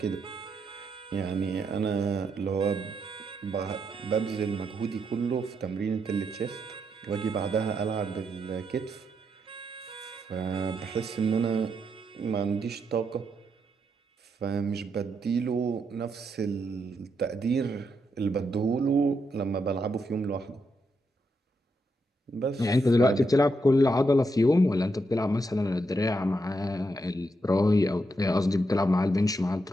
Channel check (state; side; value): normal; both; correlation 0.81